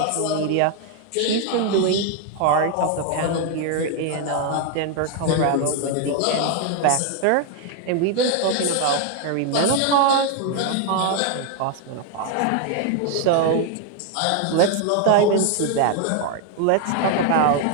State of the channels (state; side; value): different; both; correlation 0.01